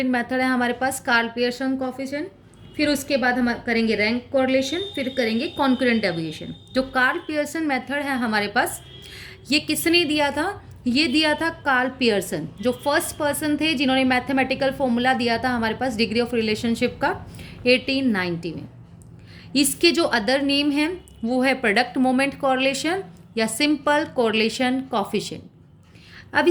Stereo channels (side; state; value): both; identical; correlation 1.00